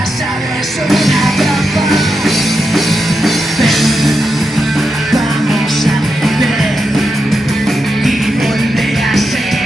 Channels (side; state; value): both; normal; correlation 0.87